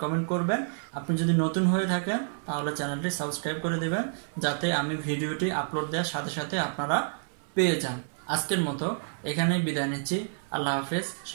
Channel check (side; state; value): left; silent; 59 dB below the other